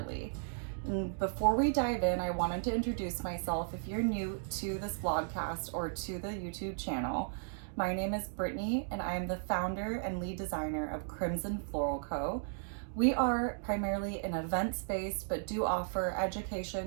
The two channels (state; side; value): silent; left; digital silence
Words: And before we dive in, I wanted to introduce myself. If you're new to this vlogcast or to the YouTube channel, my name is Brittany and I am the founder and lead designer of Crimson Floral Co. We are primarily an events-based but do offer